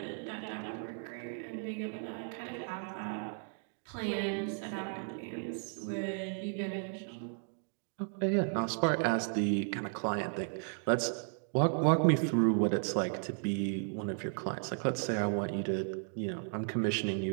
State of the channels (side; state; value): left; silent; 55 dB below the other